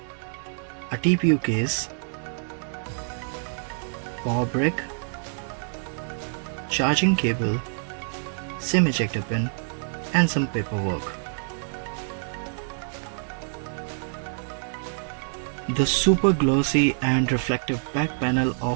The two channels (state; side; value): silent; left; 56 dB below the other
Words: a TPU case, power brick, charging cable, SIM ejector pin and some paperwork. The super glossy and reflective back panel